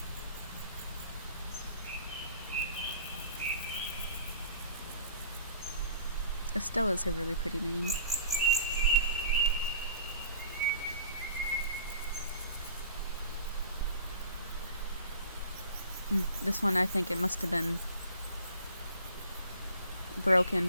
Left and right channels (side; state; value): both; inverted; correlation -0.48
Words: Estella's a really pretty name. This one, I think it must have been